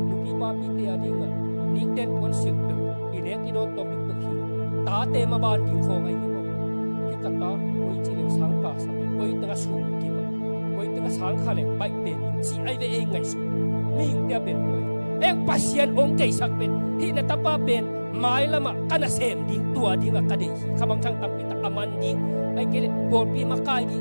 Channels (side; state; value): both; inverted; correlation -1.00